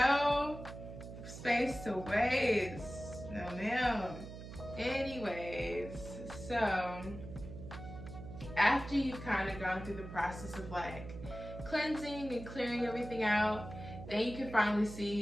space to waste. No ma'am. Anyways, so after you've kind of gone through the process of like cleansing and clearing everything out, then you can finally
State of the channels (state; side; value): noise; right; hum, 11 dB below the sound